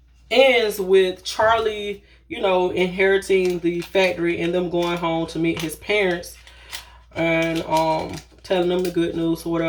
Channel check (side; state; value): both; identical; correlation 1.00